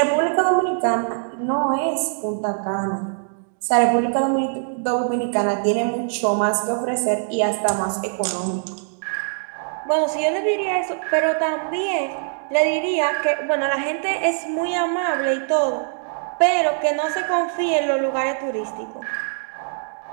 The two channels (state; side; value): silent; left; digital silence